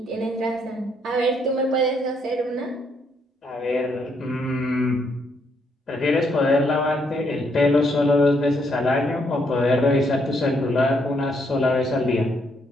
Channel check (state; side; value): normal; both; correlation 0.73